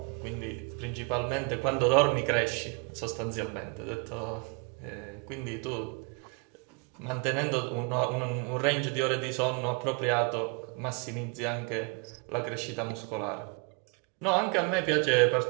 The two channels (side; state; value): left; quieter; 34.3 dB